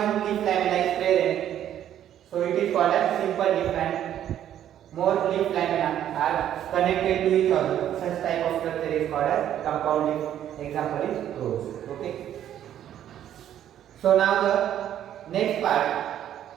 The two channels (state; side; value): quieter; left; 10.9 dB